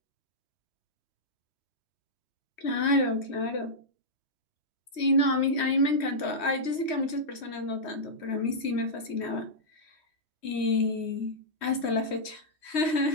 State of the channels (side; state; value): right; late; 3.1 ms